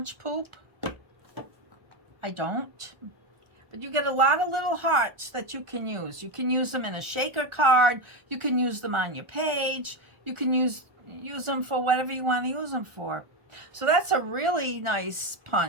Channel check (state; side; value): late; left; 1.4 ms